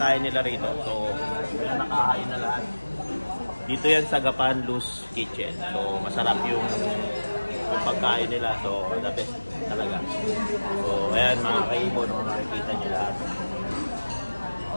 nila rito. So yan nakahain na lahat. Dito yan sa Gapan Luz Kitchen. So masarap yung pagkain nila. So the best talaga. So ayan mga kaibon, makikita nyo lahat.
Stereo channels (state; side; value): inverted; both; correlation -1.00